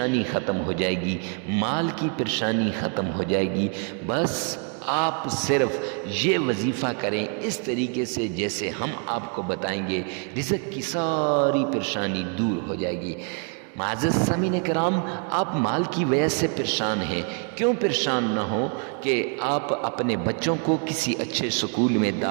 ختم ہو جائے گی، مال کی پریشانی ختم ہو جائے گی۔ بس آپ صرف یہ وظیفہ کریں اس طریقے سے جیسے ہم آپ کو بتائیں گے، رزق کی ساری پریشانی دور ہو جائے گی۔ معزز سامعین کرام، آپ مال کی وجہ سے پریشان ہیں، کیوں پریشان نہ ہو کہ آپ اپنے بچوں کو کسی اچھے سکول میں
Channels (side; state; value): left; quieter; 39.9 dB